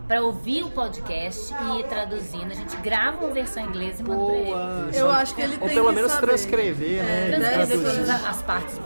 para ouvir o podcast e ir traduzindo. A gente grava uma versão em inglês e manda pra ele. Boa. Eu acho que ele Ou tem pelo que menos saber. transcrever, né? e Transcrever traduzir. todas as partes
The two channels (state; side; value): inverted; both; correlation -1.00